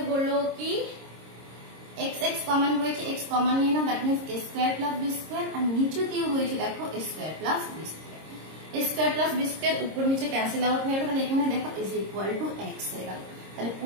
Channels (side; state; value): left; late; 26 ms